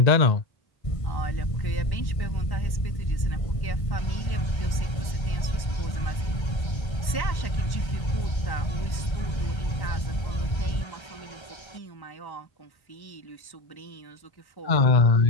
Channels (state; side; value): late; right; 1.1 ms